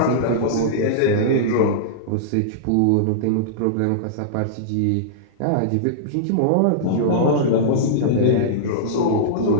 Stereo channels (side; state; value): both; different; correlation -0.03